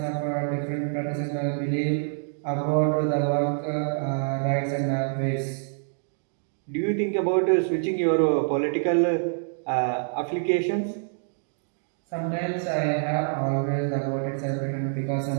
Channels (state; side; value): silent; left; digital silence